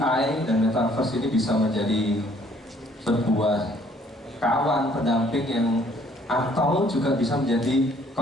dan metaverse ini bisa menjadi sebuah kawan pendamping yang, atau juga bisa menjadi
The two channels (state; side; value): normal; both; correlation 0.61